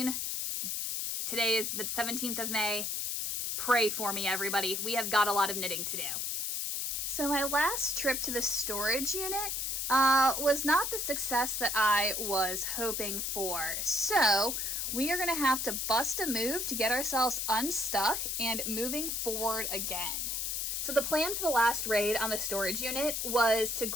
Today is the 17th of May. Pray for me, everybody. We have got a lot of knitting to do. So my last trip to the storage unit was not the success that I was hoping for. So we are going to have to bust a move to get ourselves unstuck and moving forward again. So the plan for the last raid on the storage unit was to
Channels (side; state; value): left; noise; hiss, 1 dB below the sound